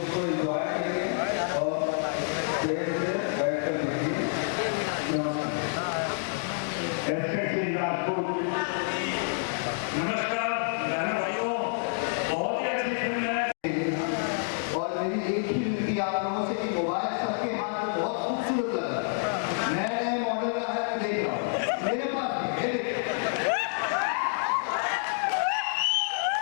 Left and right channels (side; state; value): right; silent; digital silence